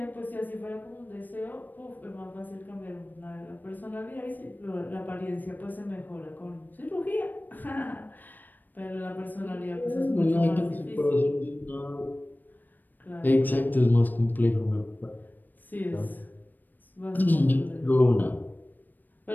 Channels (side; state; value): right; late; 0.088 ms